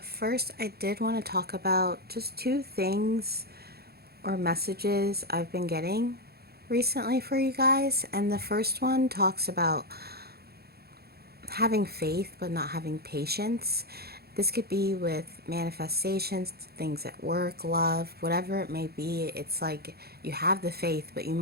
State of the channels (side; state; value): left; late; 0.46 ms